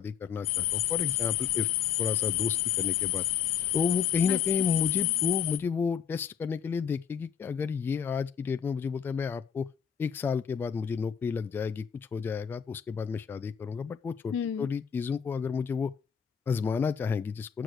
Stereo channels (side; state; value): right; quieter; 7.7 dB